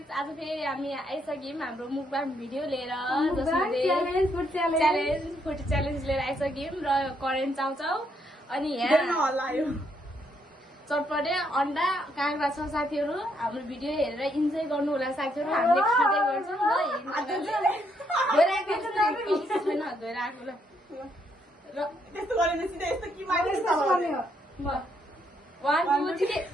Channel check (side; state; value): both; normal; correlation 0.74